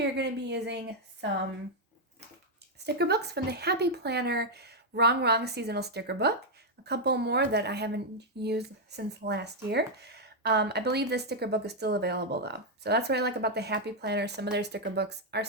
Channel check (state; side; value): normal; both; correlation -0.01